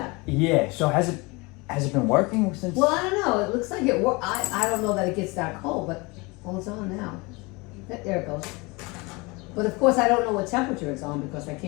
Yeah. So has it been working since? Well, I don't know. It looks like it. I don't know that it gets that cold, but it's on now. There it goes. But of course, I don't know what temperature it's on because I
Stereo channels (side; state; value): right; quieter; 25.9 dB